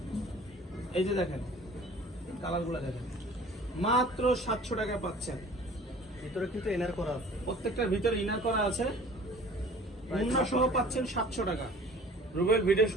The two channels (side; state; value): both; normal; correlation 0.47